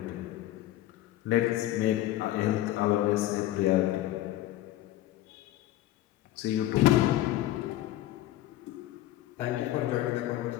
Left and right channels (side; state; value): right; quieter; 14.5 dB